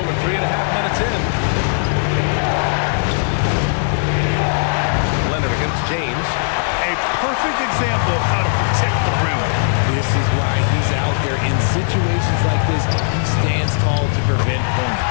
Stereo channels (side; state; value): right; silent; 62 dB below the other